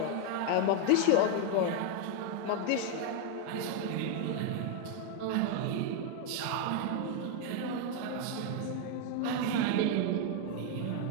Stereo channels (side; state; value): both; different; correlation 0.00